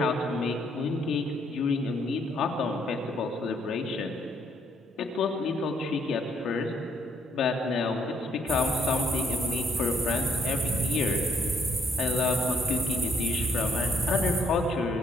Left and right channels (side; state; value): both; normal; correlation 0.71